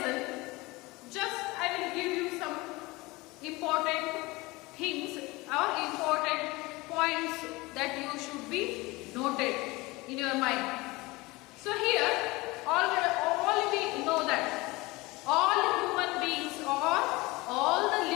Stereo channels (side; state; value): right; quieter; 22.4 dB